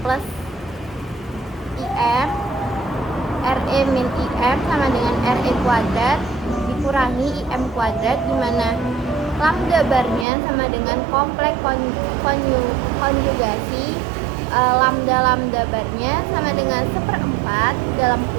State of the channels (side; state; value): left; drops out; at 10.2 s